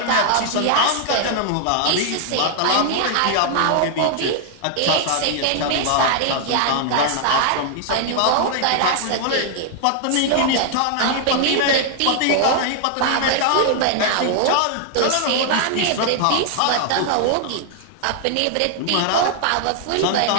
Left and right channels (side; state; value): both; different; correlation 0.00